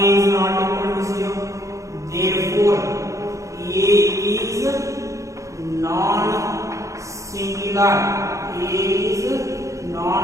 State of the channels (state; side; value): late; left; 0.15 ms